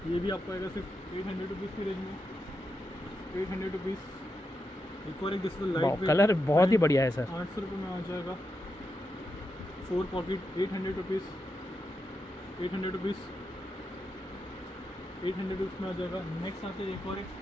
ये भी आपको आएगा सिर्फ 800 रुपीज़ की रेंज में, 800 रुपीज़। एक और एक जैसे वाओ, लाइट कलर बहुत ही बढ़िया है सर। 800 रुपये में आ जाएगा। 4 पॉकेट 800 रुपीज़, 800 रुपीज़, 800 रुपीज़ में आ जाएगा। नेक्स्ट आते हैं एक और एक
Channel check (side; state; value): both; normal; correlation 0.86